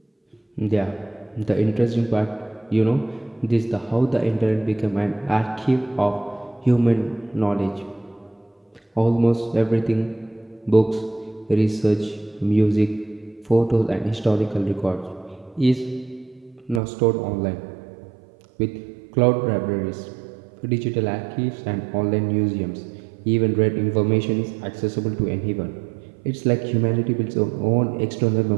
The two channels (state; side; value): drops out; left; at 16.8 s